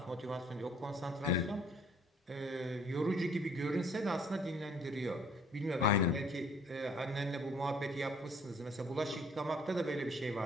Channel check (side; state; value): both; normal; correlation 0.58